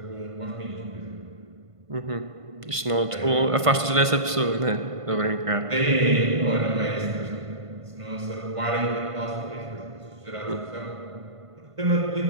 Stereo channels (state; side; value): late; left; 1.5 ms